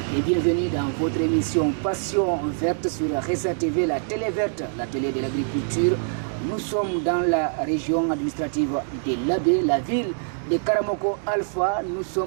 et bienvenue dans votre émission Passion verte sur Ressa TV, la télé verte, la télé de l'agriculture. Nous sommes dans la région administrative de Labé, la ville de Karamoko Alpha. Nous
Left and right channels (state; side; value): silent; left; digital silence